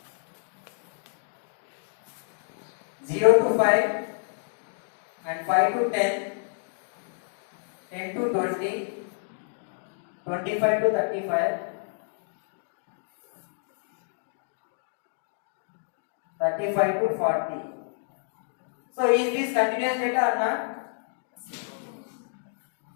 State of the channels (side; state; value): right; silent; digital silence